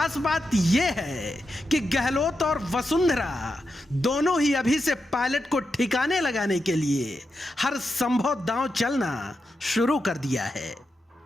बात यह है कि गहलोत और वसुंधरा दोनों ही अभी से पायलट को ठिकाने लगाने के लिए हर संभव दांव चलना शुरू कर दिया है।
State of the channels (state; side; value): normal; both; correlation 0.87